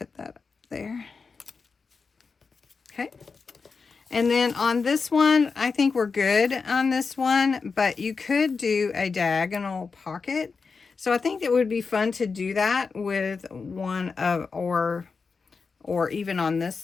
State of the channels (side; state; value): right; quieter; 4.9 dB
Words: that up there. Okay. And then on this one, I think we're good on this one, but you could do a diagonal pocket. So I think it would be fun to do that with one of, or even on this